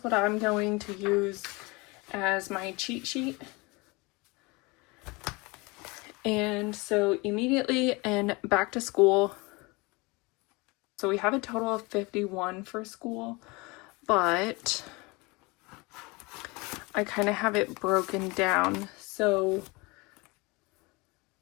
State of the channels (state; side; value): quieter; right; 25.8 dB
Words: what I'm going to use as my cheat sheet. And so immediately and back to school. So we have a total of 51 for school, but I kind of have it broken down. So